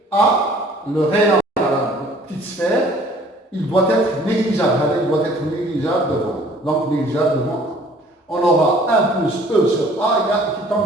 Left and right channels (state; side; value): normal; both; correlation 0.54